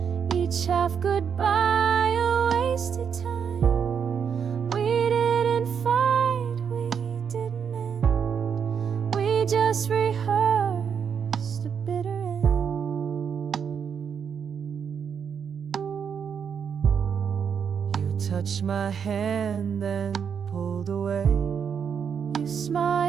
each half goodbye, a wasted time. We didn't fight, we didn't end, we just rehearsed a bitter end. You touched my hand and pulled away. You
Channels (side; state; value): left; quieter; 7.2 dB